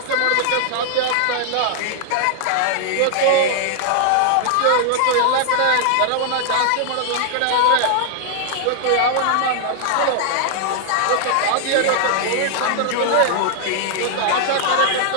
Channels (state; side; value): different; both; correlation 0.00